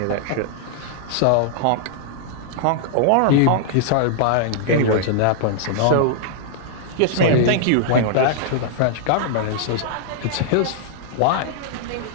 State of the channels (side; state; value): both; different; correlation -0.01